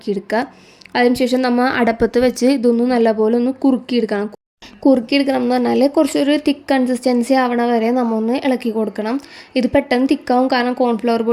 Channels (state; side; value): identical; both; correlation 1.00